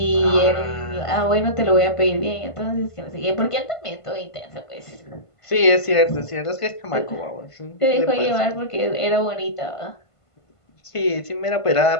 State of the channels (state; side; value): late; right; 1.5 ms